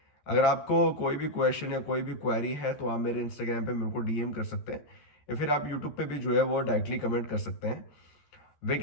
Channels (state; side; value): late; right; 13 ms